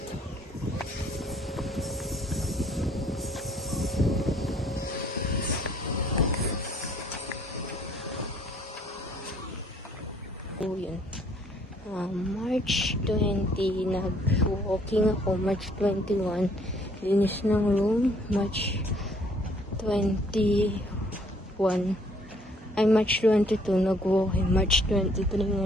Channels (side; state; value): both; normal; correlation 0.62